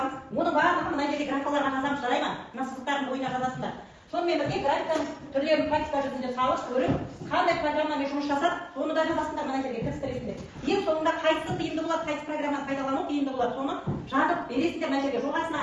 Оның барлығын мына жерде графикаларға жазамыз, жарай ма? Мына сызықтардың бойына жазасыңдар. Сонымен бірге графиканың түрлерін практика жүзінде салып көріп, қандай программамен жұмыс жасап, соны да жазасыңдар, мына жерге кірістіресіңдер. ең соңында қайсысы тиімді болады, қайсы программаны пайдалану тиімді болады, соны жазып бересіздер мына жерге жоғасына.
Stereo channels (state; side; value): identical; both; correlation 1.00